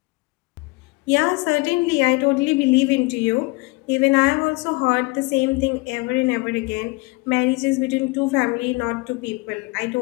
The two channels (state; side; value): quieter; right; 25.5 dB